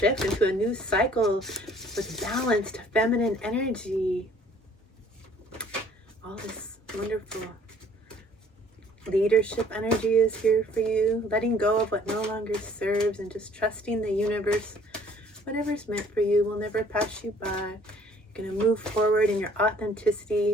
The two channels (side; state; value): both; normal; correlation 0.58